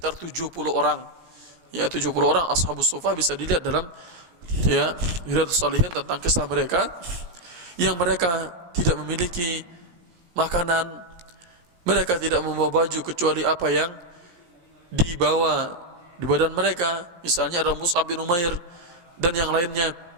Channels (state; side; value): late; left; 17 ms